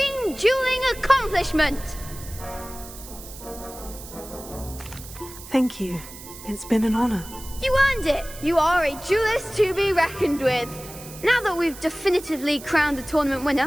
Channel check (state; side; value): noise; right; hiss, 15 dB below the sound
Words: dueling accomplishment. Thank you. It's been an honor. You earned it. You are a duelist to be reckoned with. Now that we've definitively crowned the tournament